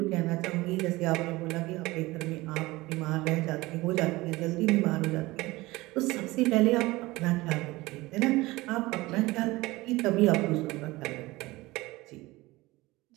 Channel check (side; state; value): left; quieter; 20.3 dB